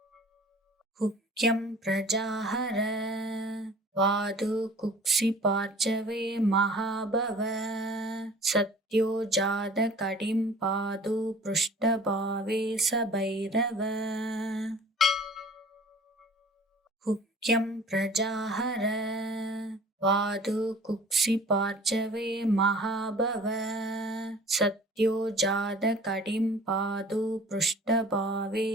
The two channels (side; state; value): both; normal; correlation 0.47